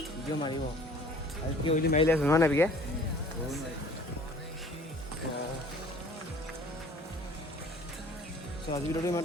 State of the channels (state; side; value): normal; both; correlation 0.51